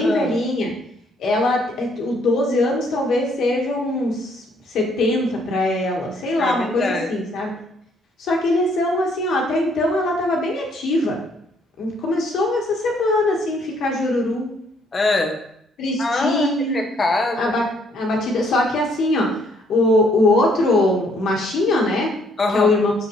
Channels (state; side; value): normal; both; correlation 0.66